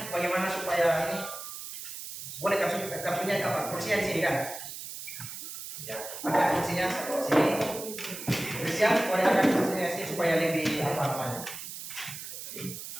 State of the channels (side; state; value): right; noise; hiss, 9 dB below the sound